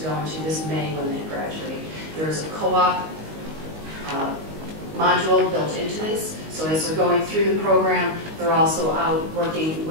go into this May when they graduate. There is a co-op module built into this, so as they're going through the program, they're also out working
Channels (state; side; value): late; left; 19 ms